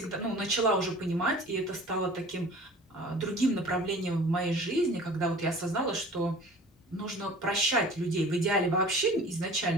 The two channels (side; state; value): both; normal; correlation 0.44